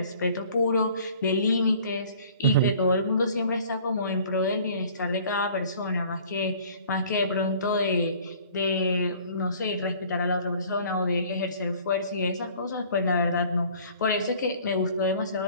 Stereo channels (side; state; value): both; inverted; correlation -0.52